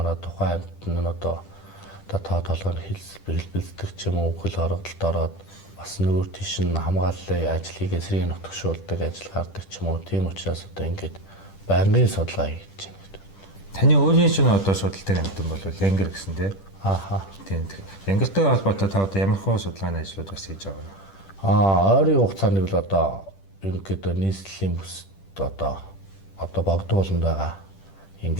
тухайн амьтан нь одоо тоо толгойн хэлбэлцдэг ч юм уу хөл хорогдолд ороод бас нүүр тийш нь хамгааллын ажлыг эсрэг нутгшуулдаг ажил гардаг ч юм уу. Тийм учраас одоо ингээд байнгын судалгаа хийж байна. Таны өөрийн чинь одоо судалдаг амьтан бол Янгер гэсэн тий. Тийм. Янгертэй холбоотой та одоо ямар хөө судалгааны ажлууд бас хийж байгаа вэ? Ойрын хугацаанд бол одоо ерөнхийдөө нийслэлийн бүсд одоо богдууланд байгаа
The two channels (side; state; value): right; late; 10 ms